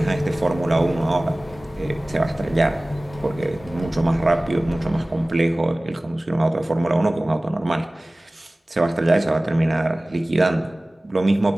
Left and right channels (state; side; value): normal; both; correlation 0.98